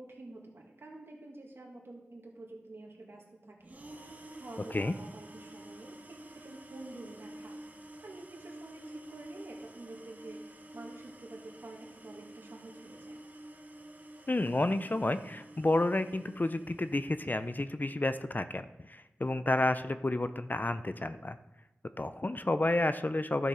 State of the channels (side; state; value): both; normal; correlation 0.91